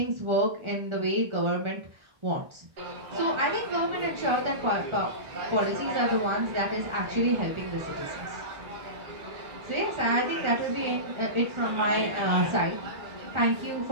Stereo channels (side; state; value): left; late; 1.4 ms